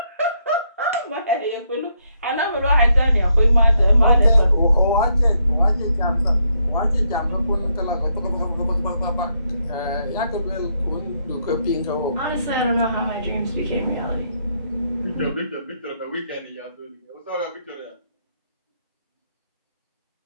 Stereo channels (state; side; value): inverted; both; correlation -0.75